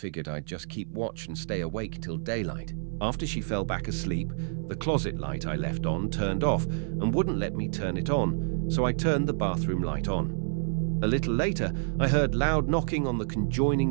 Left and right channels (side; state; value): left; silent; 59 dB below the other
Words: I'd just keep watch and stay awake till daylight. After she fell back asleep, the closet light I left on turned off and wouldn't let me turn it on, so I turned the bathroom light on. A little later, I heard loud knocking on the